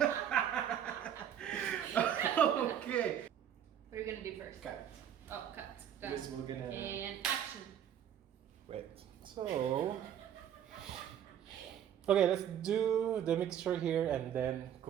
Okay. What are we gonna do first? Cut. Oh, cut. Yes, we're gonna. And action. Wait. So. Okay, let's do the mixture here and then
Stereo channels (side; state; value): left; quieter; 9.7 dB